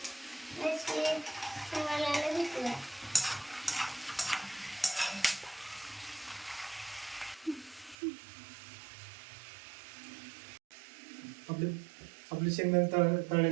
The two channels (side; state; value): left; drops out; at 8.0 s